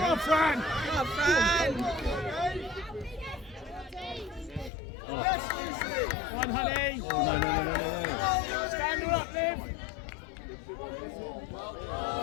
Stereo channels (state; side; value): drops out; right; at 4.7 s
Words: Fran. One, honey. Oh, no. Stand her up, Liv.